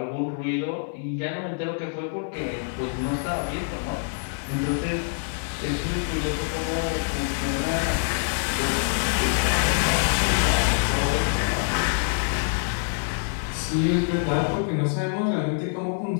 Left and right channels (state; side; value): silent; right; digital silence